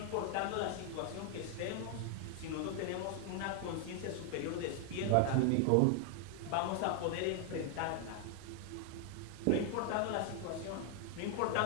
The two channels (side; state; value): both; different; correlation 0.00